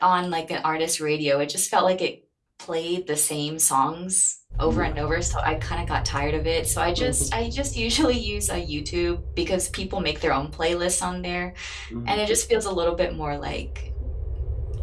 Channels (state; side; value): identical; both; correlation 1.00